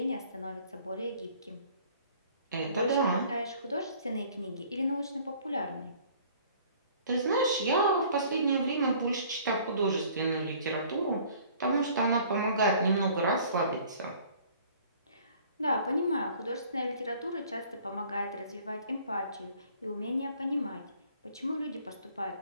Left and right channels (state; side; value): inverted; both; correlation -0.54